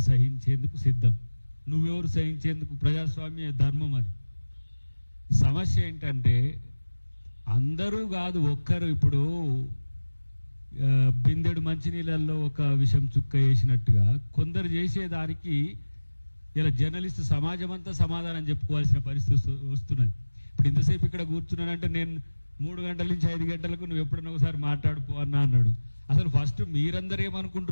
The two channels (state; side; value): inverted; both; correlation -1.00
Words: సహించేందుకు సిద్ధం. నువ్వెవరు సహించేందుకు? ప్రజాస్వామ్య ధర్మం అది. సమస్య ఏంటంటే అందరూ కాదు, ఒక్కరు. ఇప్పుడు బిందెడు మంచినీళ్ళల్లో ఒక విషం చుక్క వేసినట్టుగా కొందరు చేసేదానికి ఇలా జర్నలిస్ట్ సమాజం అంతా సమాధానం చెప్పుకోవాల్సిన పరిస్థితి వస్తున్నది. ఇప్పుడు ఇంతసేపు ఇక్కడ కూర్చున్నానంటే నేను 3 గంటల నుంచి 5 గంటలకు నువ్వు ఎప్పుడన్నా ఒకసారి మాట్లాడుకో అన్నాడు. అసలు ఫస్ట్ మీరందరూ